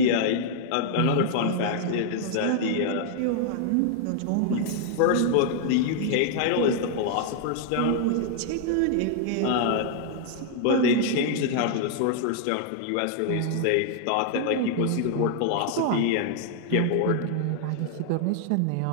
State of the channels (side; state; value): both; different; correlation 0.00